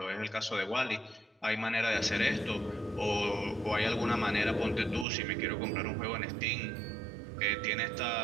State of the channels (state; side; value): drops out; left; at 5.1 s